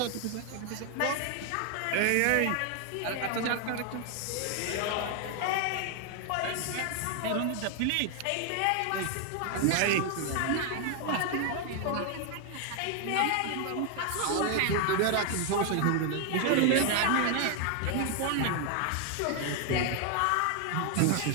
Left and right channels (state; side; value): different; both; correlation 0.00